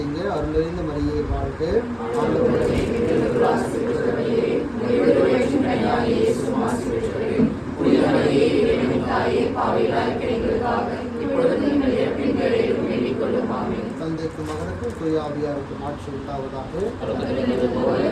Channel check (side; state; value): both; identical; correlation 1.00